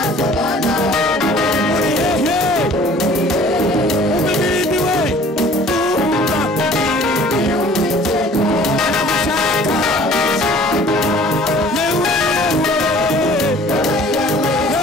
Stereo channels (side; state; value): both; normal; correlation 0.51